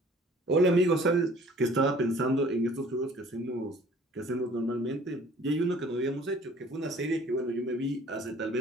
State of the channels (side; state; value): both; normal; correlation 0.52